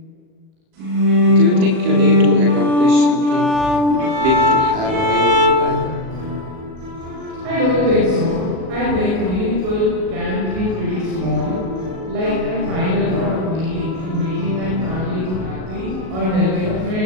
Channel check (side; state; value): left; late; 37 ms